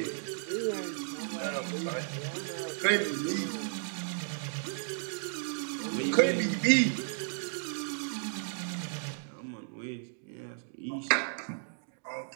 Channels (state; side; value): silent; left; digital silence